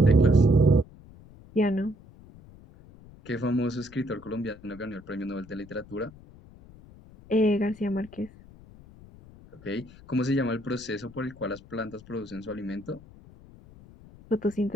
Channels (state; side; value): noise; left; rumble, 21 dB below the sound